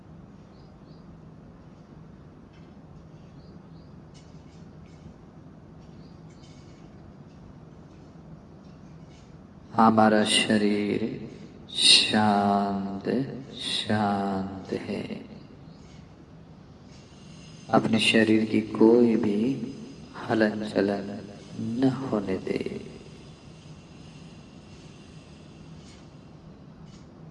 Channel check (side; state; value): both; identical; correlation 1.00